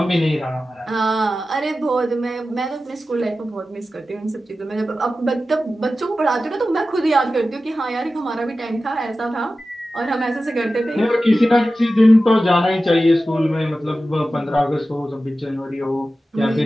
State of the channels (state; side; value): normal; both; correlation 0.94